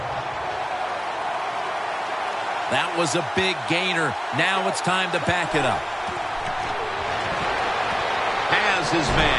That was a big gainer. Now it's time to back it up. Has his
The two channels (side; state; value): both; identical; correlation 1.00